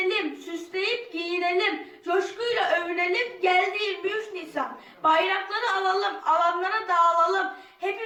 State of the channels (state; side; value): identical; both; correlation 1.00